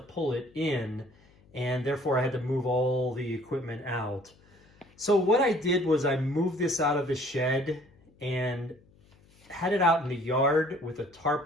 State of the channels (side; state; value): left; noise; hum, 29 dB below the sound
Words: it in, and therefore I had to move all the equipment out. So what I did was I moved this out of the shed and had it out in the yard with a tarp